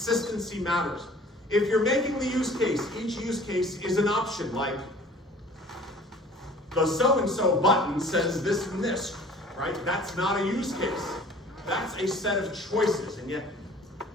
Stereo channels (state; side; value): normal; both; correlation 0.49